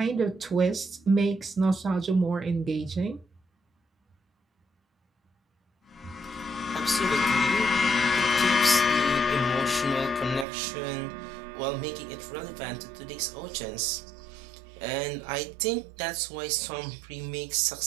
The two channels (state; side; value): drops out; left; at 10.5 s